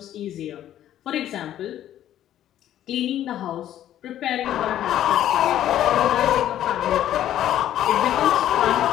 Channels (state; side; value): quieter; right; 11.8 dB